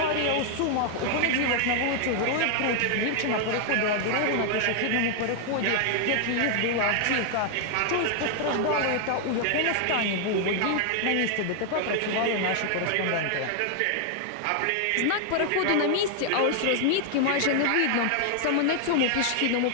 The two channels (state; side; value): different; both; correlation 0.00